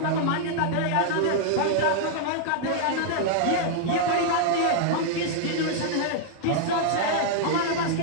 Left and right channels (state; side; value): different; both; correlation -0.01